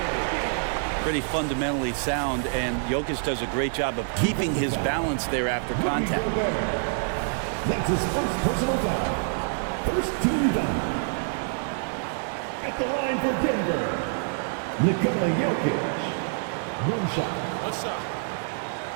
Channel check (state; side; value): silent; left; digital silence